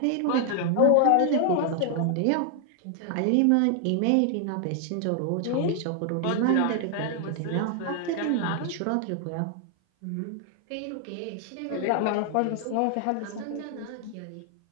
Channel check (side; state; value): both; different; correlation 0.00